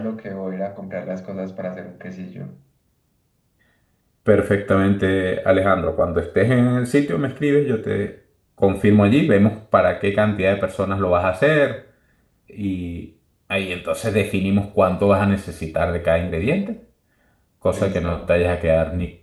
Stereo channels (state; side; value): identical; both; correlation 1.00